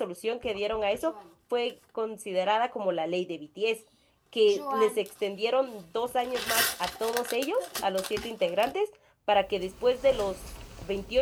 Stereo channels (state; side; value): identical; both; correlation 1.00